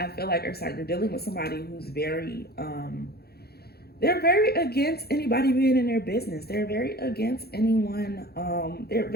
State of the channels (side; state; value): right; late; 0.46 ms